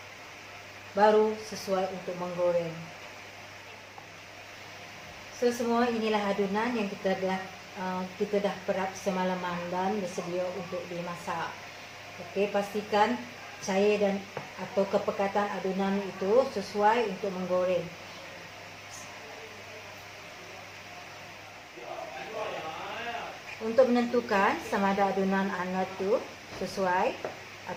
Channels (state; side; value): identical; both; correlation 1.00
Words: baru sesuai untuk menggoreng. So semua inilah adunan yang kita dah perap semalaman dan bersedia untuk dimasak. Okey, pastikan cair dan atau kepekatan adunan itu sesuai untuk menggoreng. Untuk menentukan sama ada adunan anda tu sesuai